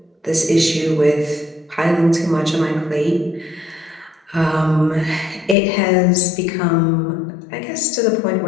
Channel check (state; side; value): drops out; right; at 5.6 s